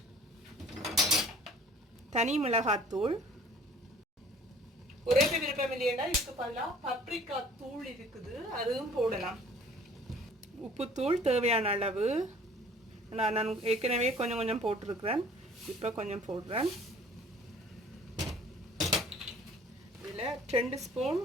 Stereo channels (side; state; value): both; normal; correlation 0.51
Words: தனி மிளகாத்தூள். ஒரே விருப்பம் இல்லையா, இதுக்கு பதிலாக பப்ரிக்கா தூள் இருக்குது, அதுவும் போடலாம். உப்புத்தூள் தேவையான அளவு. நான் ஏற்கனவே கொஞ்சம் போட்டிருக்கிறேன். இப்போ கொஞ்சம் போடுறேன். இதில் 2 ஸ்பூன்